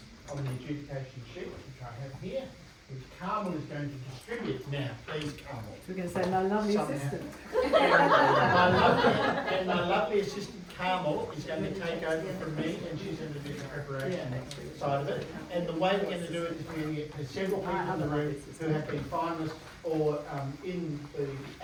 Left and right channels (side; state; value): both; identical; correlation 1.00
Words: on the adjudication sheet, which I have here, which Carmel is going to distribute now. Please, Carmel. We're going to say my lovely assistant. My lovely assistant Carmel is going to take over from me, and she's going to do the preparation side of it. And the way we're going to do it is we're going to get several people in the room who have been finalists or in the